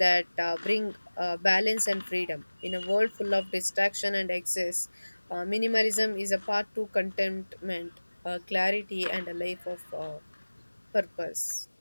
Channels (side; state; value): both; inverted; correlation -1.00